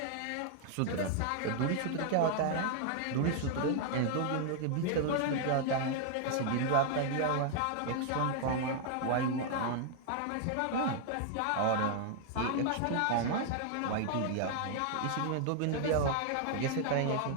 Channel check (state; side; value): different; both; correlation 0.00